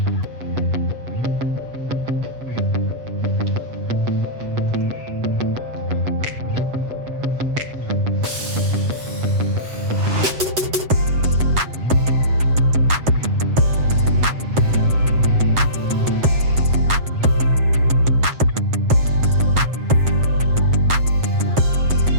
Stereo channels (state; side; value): late; left; 8.1 ms